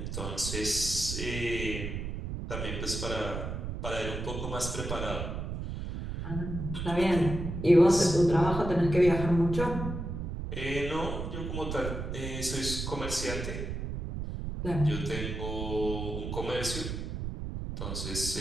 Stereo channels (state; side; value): noise; right; rumble, 5 dB below the sound